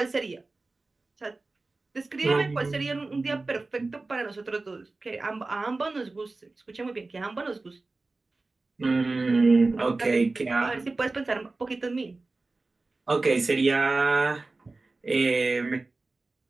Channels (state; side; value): quieter; left; 3.4 dB